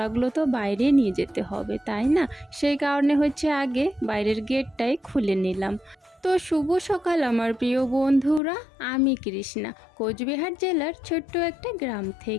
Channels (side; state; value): right; drops out; at 8.4 s